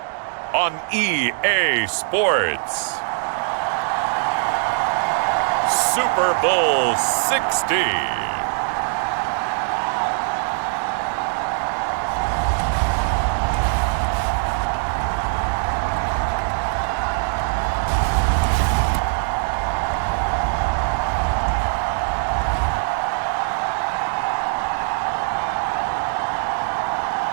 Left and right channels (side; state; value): left; silent; 64 dB below the other